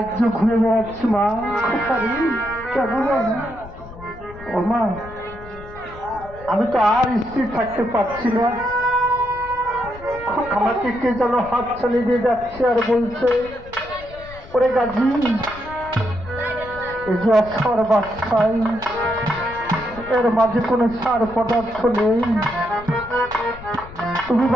ঘুরে বেড়াচ্ছি মা, কেন ও মা, আমি তো আর স্থির থাকতে পারছি না। আমাকে কে যেন হাত ছাড়িয়ে দিয়ে যাচ্ছে আর বলছে, ওরে গাজী, এই যে অক্ষর বাচ্চাই, এর মাঝে কোনো সার পদার্থ নেই, তুমি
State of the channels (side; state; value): left; noise; rumble, 17 dB below the sound